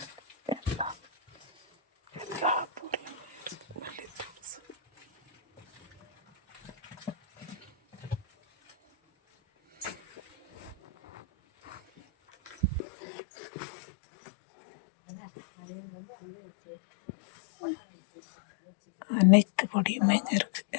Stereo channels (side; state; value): right; drops out; at 12.8 s